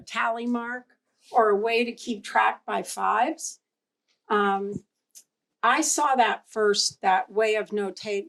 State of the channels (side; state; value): both; identical; correlation 1.00